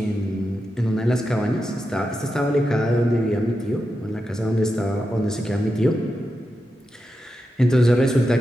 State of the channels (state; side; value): normal; both; correlation 0.88